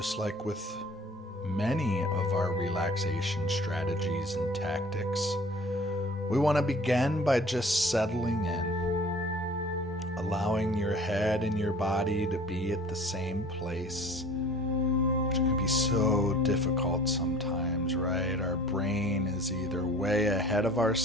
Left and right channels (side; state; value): both; normal; correlation 0.47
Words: like with many of our relaxation strategies and tactics, we want to begin by just settling in. Allowing your head and your body to be at the same place, which can be so difficult sometimes, right? Our brain is either way ahead of